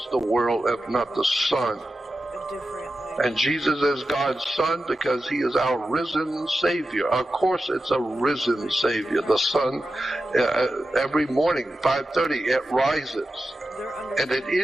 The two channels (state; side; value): normal; both; correlation 0.92